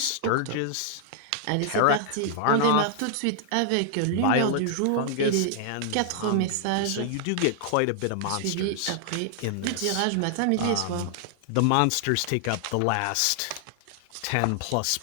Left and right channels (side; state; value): both; different; correlation 0.00